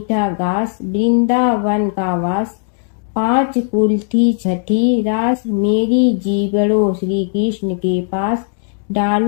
घास वृंदावन का वास, 5 कुल्ठी छठी रास, मेरी जीवड़ो श्री कृष्ण के पास,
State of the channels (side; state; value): right; silent; 66 dB below the other